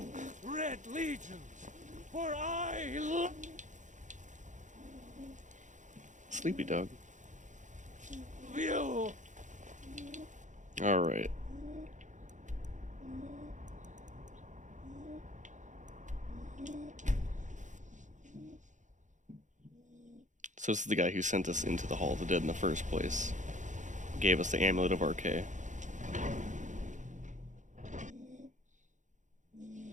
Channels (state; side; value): late; left; 0.36 ms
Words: Red Legions, for I Sleepy dog. will. Alright. So this is the guy who sent us into the Hall of the Dead in the first place. Gave us the Amulet of Arche.